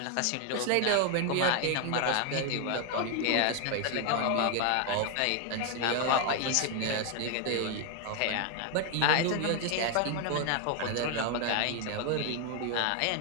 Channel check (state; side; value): different; both; correlation 0.01